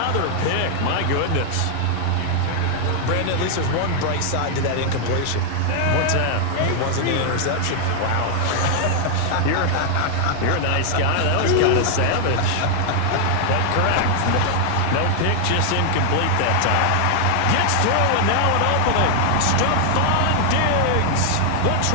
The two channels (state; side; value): different; both; correlation 0.00